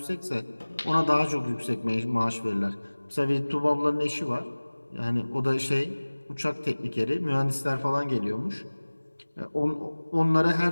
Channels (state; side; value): inverted; both; correlation -1.00